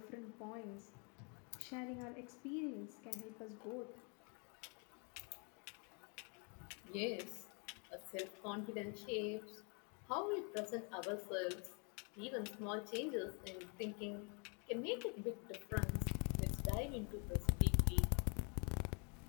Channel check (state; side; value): quieter; right; 36.0 dB